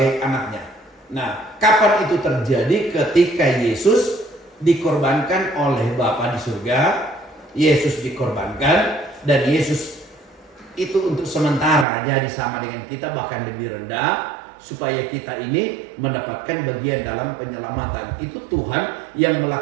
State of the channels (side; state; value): left; drops out; at 11.9 s